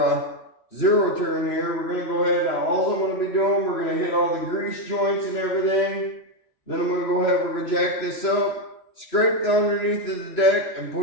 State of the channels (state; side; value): late; right; 2.9 ms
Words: zero turn here. We're going to go ahead, now all I'm going to be doing, we're going to hit all the grease joints and everything. Then I'm going to go ahead, we're going to jack this up, scrape the underneath of the deck, and